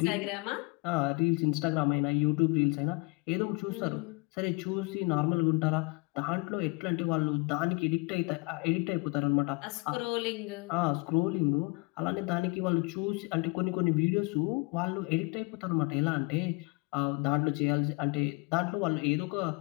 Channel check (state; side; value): quieter; right; 28.1 dB